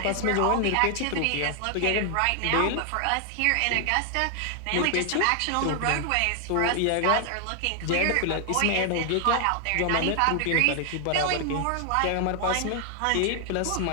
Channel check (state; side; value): different; both; correlation 0.00